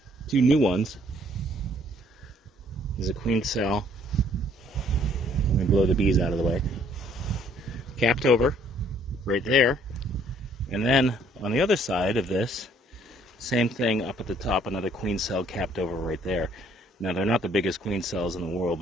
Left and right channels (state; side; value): normal; both; correlation 0.62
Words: 2 new ones. There's a queen cell. Let me blow the bees out of the way. Capped over, right there. And then on the other side of this, same thing up at the top, another queen cell capped over right there. Now, they're not the biggest queen cells in the world,